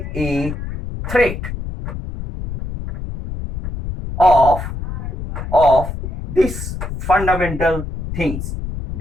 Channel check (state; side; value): noise; left; rumble, 7 dB below the sound